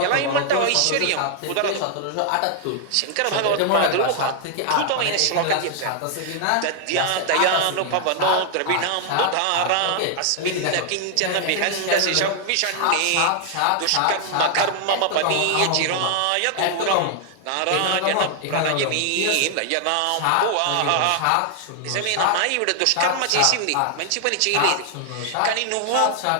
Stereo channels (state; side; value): different; both; correlation 0.00